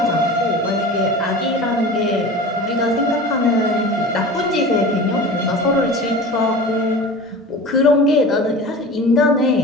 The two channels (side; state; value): both; normal; correlation 0.35